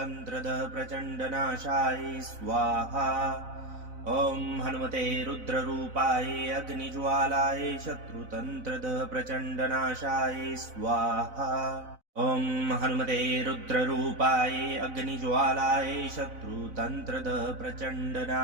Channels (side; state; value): left; late; 4.0 ms